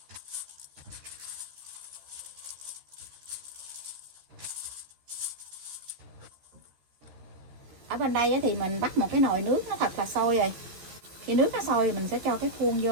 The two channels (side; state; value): left; late; 13 ms